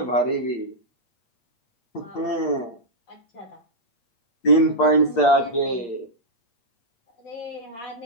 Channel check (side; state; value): right; late; 8.6 ms